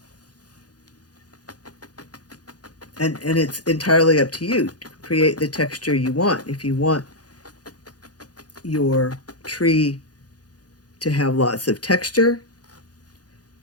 And it's entirely up to you to create the texture you want. If you want your tree to have lots of texture,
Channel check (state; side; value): late; right; 0.69 ms